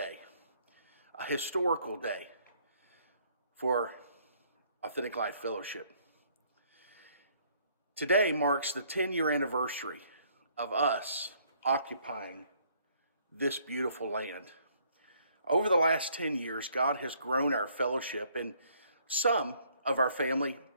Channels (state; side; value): inverted; both; correlation -0.64